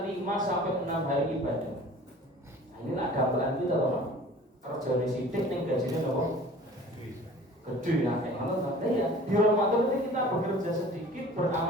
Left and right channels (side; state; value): both; normal; correlation 0.46